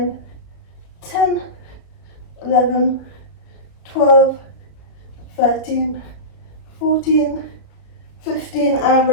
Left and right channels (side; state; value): right; late; 33 ms